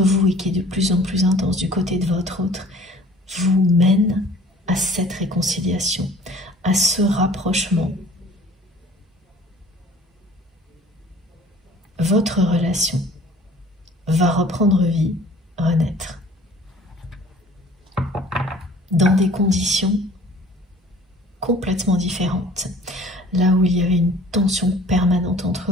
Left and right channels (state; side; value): normal; both; correlation 0.50